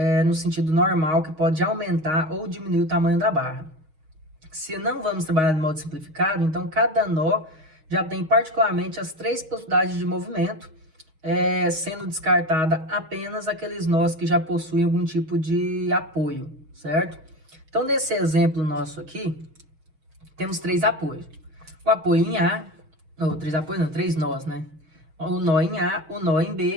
no sentido normal, que pode aumentar ou diminuir o tamanho da barra. Se não vamos trabalhar de modo simplificado, então cada nó já tem particularmente as 3 possibilidades de movimento, sendo descartada apenas aqueles nós que já possuem algum tipo de apoio, certo? Então, nesse exemplo nosso aqui, temos 3 apoios. O apoio em A, ou 3 apoios não, 3 nós, né? O nó em A, o nó em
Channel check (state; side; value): late; left; 6.3 ms